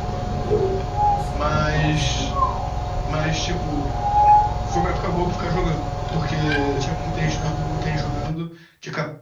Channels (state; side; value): identical; both; correlation 1.00